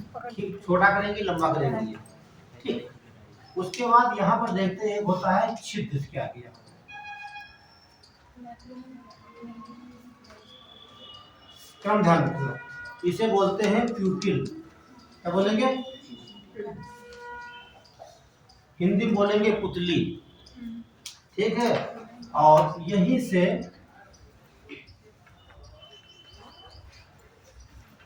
छोटा करेंगे, लंबा करेंगे। ठीक, उसके बाद यहाँ पर देखते हैं होता है छिद्र। क्या किया? क्रम ध्यान रखना, इसे बोलते हैं प्यूपिल। क्या बोलेंगे? हिंदी में बोलेंगे पुतली। ठीक है, और यहीं से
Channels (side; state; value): both; identical; correlation 1.00